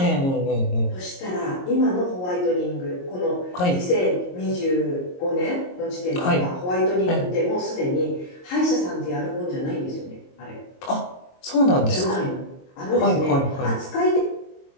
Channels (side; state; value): right; late; 22 ms